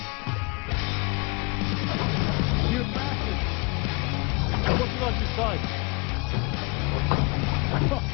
You bastard! What did I just say?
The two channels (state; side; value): quieter; right; 29.1 dB